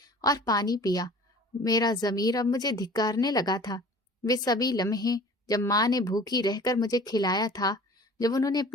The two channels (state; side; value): normal; both; correlation 0.45